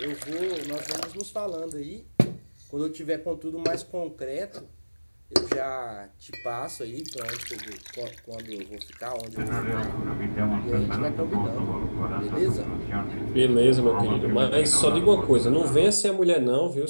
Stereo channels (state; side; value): inverted; both; correlation -1.00